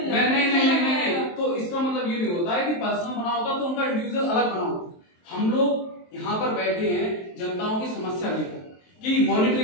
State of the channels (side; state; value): right; late; 23 ms